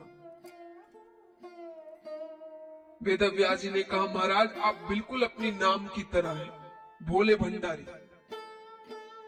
वेदव्यास जी ने कहा, महाराज आप बिल्कुल अपनी नाम की तरह है, भोले भंडारी।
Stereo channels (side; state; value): both; identical; correlation 1.00